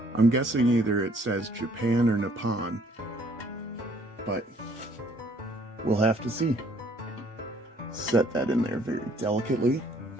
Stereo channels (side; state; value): both; normal; correlation 0.62